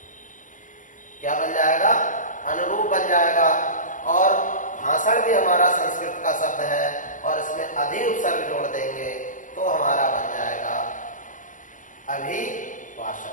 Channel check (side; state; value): right; late; 0.37 ms